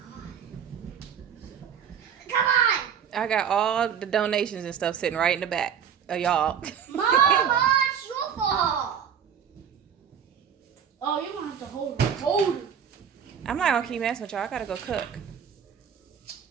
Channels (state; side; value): quieter; left; 7.9 dB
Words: Come on. I got all the donations and stuff sitting right in the back of y'all. Mama, it's your fault. Oh, you're gonna have to hold it. Hold it. I'm not gonna keep messing with y'all. I gotta go cook.